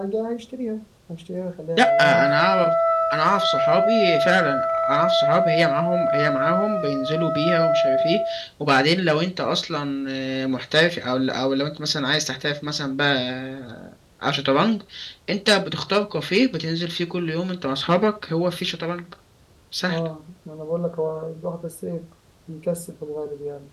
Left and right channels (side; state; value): both; identical; correlation 1.00